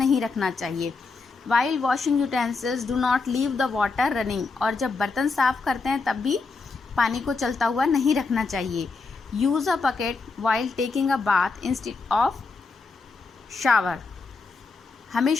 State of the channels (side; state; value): right; quieter; 4.2 dB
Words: रखना चाहिए. While washing utensils do not leave the water running. और जब बर्तन साफ़ करते हैं तब भी पानी को चलता हुआ नहीं रखना चाहिए. Use a bucket while taking a bath instead of shower.